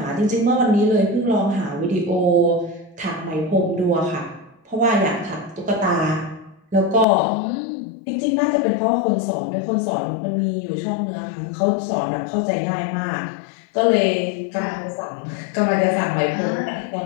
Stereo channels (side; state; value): right; drops out; at 7.1 s